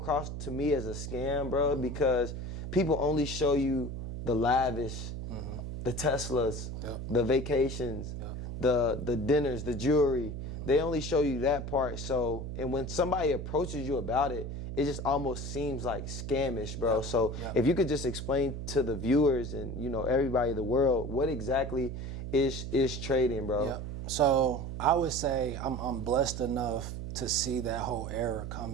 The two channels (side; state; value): right; noise; hum, 6 dB below the sound